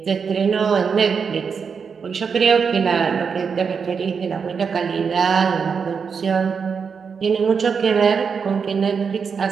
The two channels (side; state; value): left; quieter; 6.0 dB